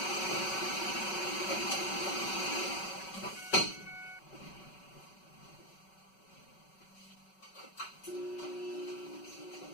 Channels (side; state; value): right; late; 5.3 ms